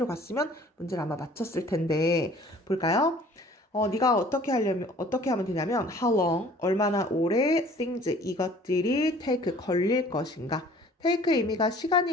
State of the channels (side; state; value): both; normal; correlation 0.52